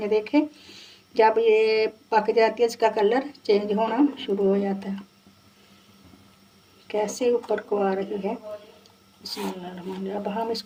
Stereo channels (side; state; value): both; identical; correlation 1.00